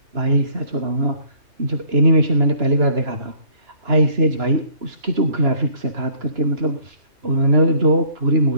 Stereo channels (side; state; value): left; late; 2.9 ms